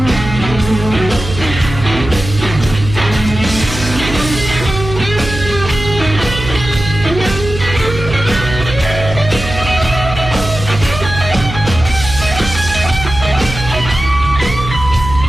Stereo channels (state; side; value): noise; right; hum, 8 dB below the sound